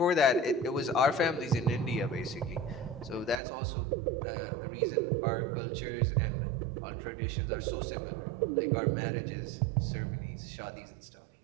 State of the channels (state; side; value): drops out; left; at 3.4 s